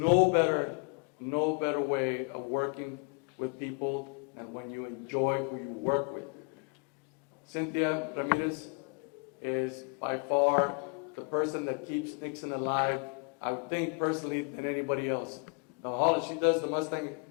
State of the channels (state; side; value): quieter; right; 39.9 dB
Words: better way of working with people than when you enjoy who you work with. Cynthia Ramirez is by far the person that keeps Nixon alive, I would think personally, than anybody else. She does the Mustang